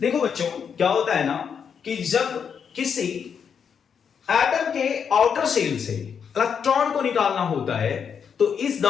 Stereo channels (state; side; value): quieter; right; 7.0 dB